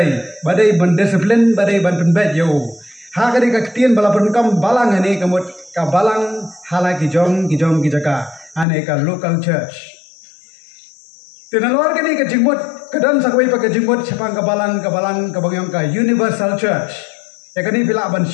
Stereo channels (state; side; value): drops out; right; at 8.7 s